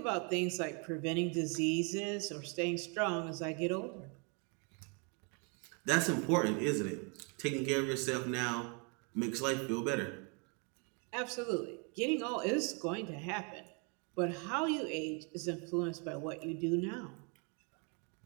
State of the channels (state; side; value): quieter; left; 35.4 dB